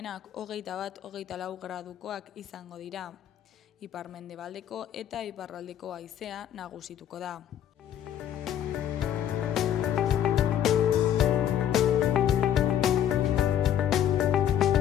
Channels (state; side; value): quieter; right; 10.4 dB